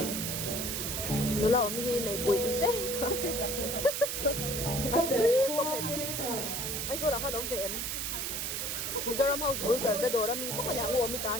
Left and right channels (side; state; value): right; noise; hiss, 2 dB below the sound